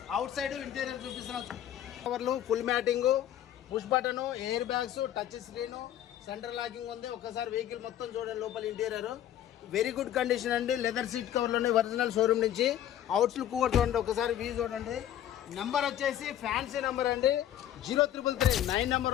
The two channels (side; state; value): right; quieter; 11.3 dB